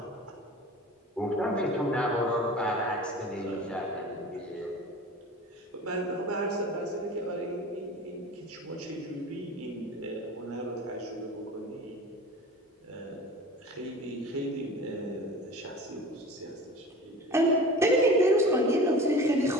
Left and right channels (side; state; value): both; normal; correlation 0.38